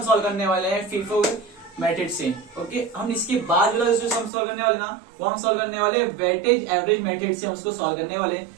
सॉल्व करने वाले हैं फीफो मेथड से। ओके, हम इसके बाद जो सम सॉल्व करने वाले ना, वो हम सॉल्व करने वाले वेटेज एवरेज मेथड से, हम उसको सॉल्व करने वाले।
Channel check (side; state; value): left; drops out; at 4.3 s